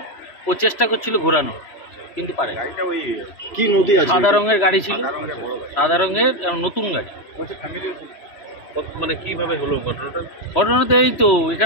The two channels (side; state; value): right; late; 3.1 ms